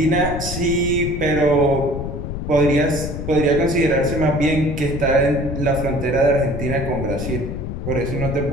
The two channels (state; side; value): noise; left; rumble, 5 dB below the sound